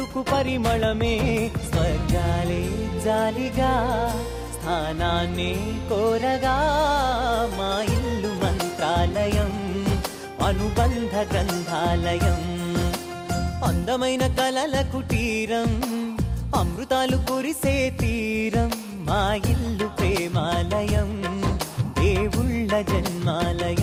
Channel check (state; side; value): identical; both; correlation 1.00